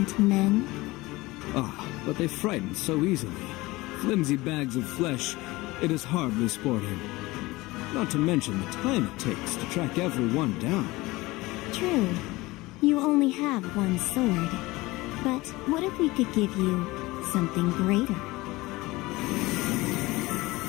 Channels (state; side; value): quieter; right; 20.7 dB